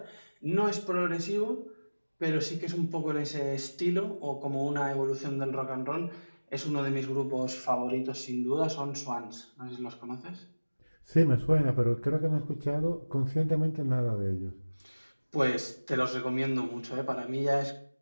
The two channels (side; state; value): both; inverted; correlation -1.00